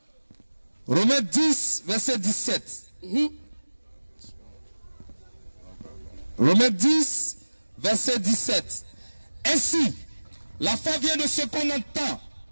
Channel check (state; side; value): inverted; both; correlation -1.00